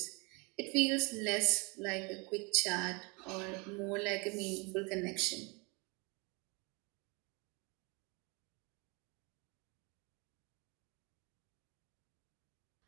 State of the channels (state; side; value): quieter; left; 29.7 dB